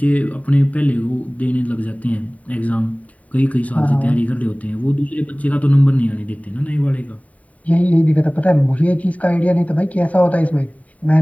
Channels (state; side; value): late; right; 0.069 ms